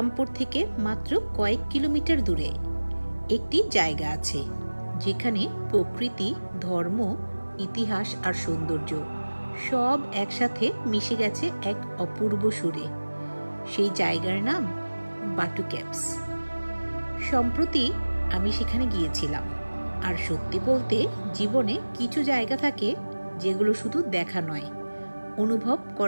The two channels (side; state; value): both; inverted; correlation -1.00